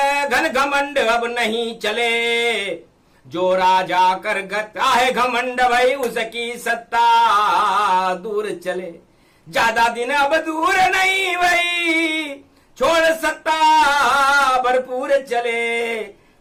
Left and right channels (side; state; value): both; identical; correlation 1.00